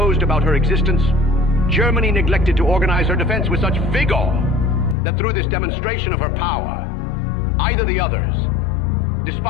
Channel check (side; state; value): right; drops out; at 5.0 s